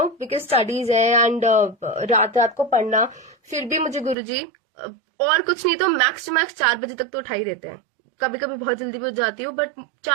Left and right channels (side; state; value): left; drops out; at 4.2 s